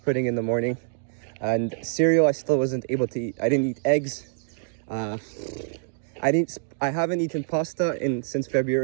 in the morning, and cereal I still wasn't able to eat. I didn't eat eggs. I haven't eaten pasta since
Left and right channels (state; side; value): silent; left; digital silence